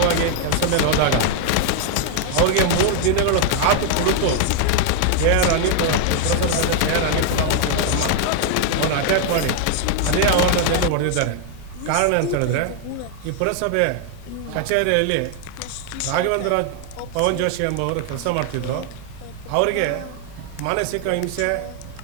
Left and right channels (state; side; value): different; both; correlation 0.00